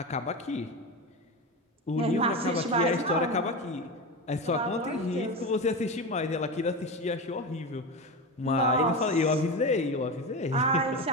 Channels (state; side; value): normal; both; correlation 0.21